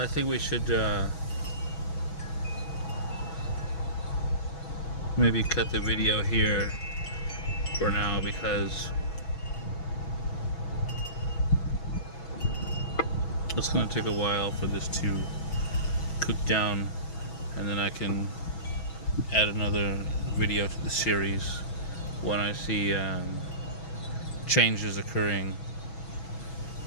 think we should maybe cut the video here for now, because it's going to take a while for this to cook down, and then I can add another video to the series when I see changes occurring.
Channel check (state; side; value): late; right; 6.1 ms